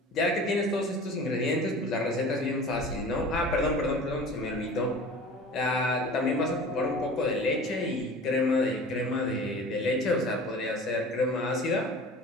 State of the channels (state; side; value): normal; both; correlation 0.40